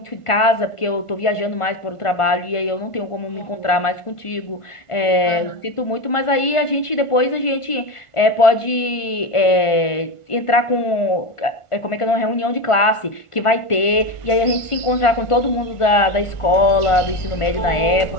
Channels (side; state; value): right; late; 1.5 ms